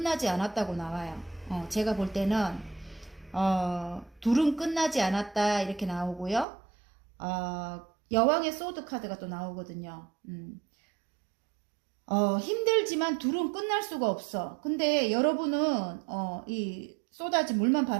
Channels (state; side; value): drops out; left; at 6.5 s